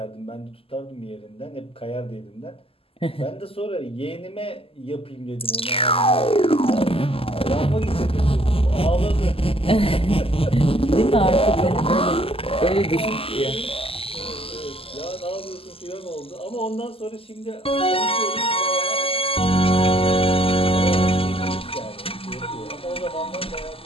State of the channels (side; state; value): right; late; 0.27 ms